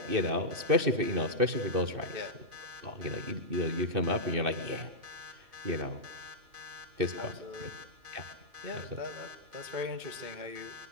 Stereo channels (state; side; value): late; left; 2.6 ms